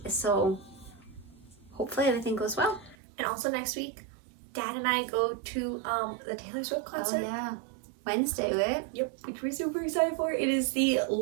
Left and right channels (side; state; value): left; drops out; at 3.0 s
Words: so hopefully everything goes well. And also next week, Dad and I go to the Taylor Swift concert. Oh yeah, Wednesday, right? Yep, which we're super excited for. It is the